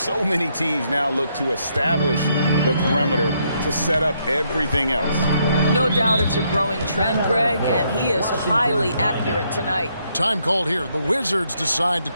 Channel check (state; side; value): inverted; both; correlation -0.74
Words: many teams now look to establish the perimeter to set up everything else. No doubt it's a growing trend, Greg, and he is highly accurate tonight. Time called here. The Wizards decide to